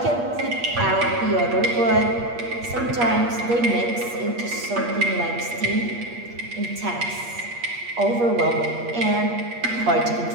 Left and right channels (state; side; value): late; left; 8.4 ms